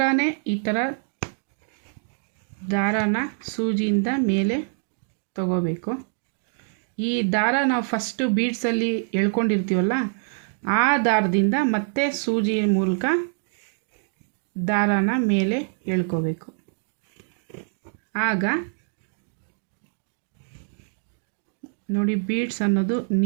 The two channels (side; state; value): left; silent; digital silence